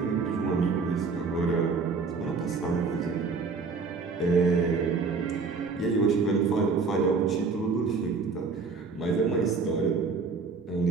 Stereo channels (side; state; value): left; quieter; 4.7 dB